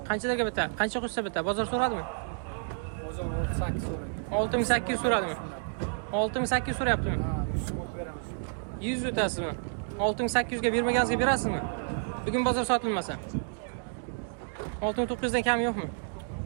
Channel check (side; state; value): left; silent; digital silence